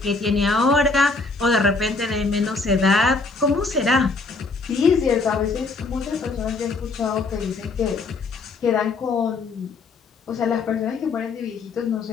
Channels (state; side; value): quieter; right; 3.8 dB